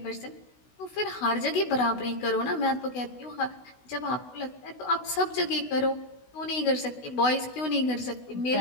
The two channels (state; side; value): late; right; 16 ms